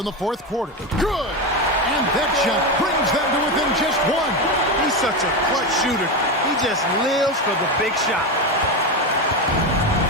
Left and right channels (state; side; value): normal; both; correlation 0.15